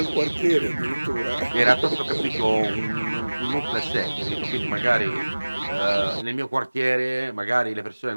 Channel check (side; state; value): both; inverted; correlation -1.00